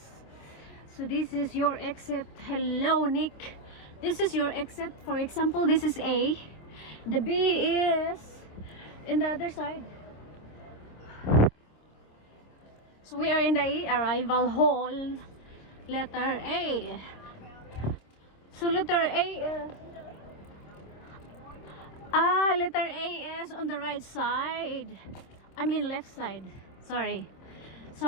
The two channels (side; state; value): right; late; 26 ms